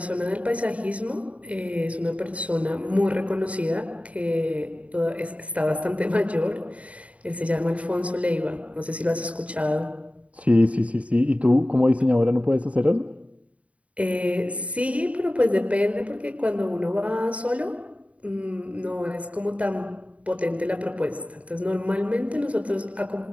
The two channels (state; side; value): late; left; 0.066 ms